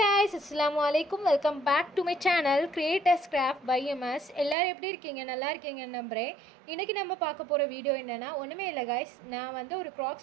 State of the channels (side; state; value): left; drops out; at 4.5 s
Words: assalamu alaikum. Welcome back to my channel Creators Craft by MS. எல்லாரும் எப்படி இருக்கீங்க? நல்லா இருக்கீங்கன்னு நம்புறேன். இன்னைக்கு நம்ம பார்க்க போற வீடியோ என்னன்னா ஒண்ணுமே இல்ல guys. நான் வந்து ஒரு